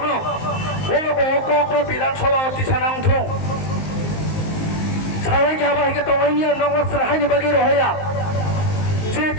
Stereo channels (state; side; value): late; right; 19 ms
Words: ও কক বিধানসভা অতি সানা উঠুং সারাই গাবা হিকে তংনাইনি নগর সাহাইনি বাকি রহয়া যে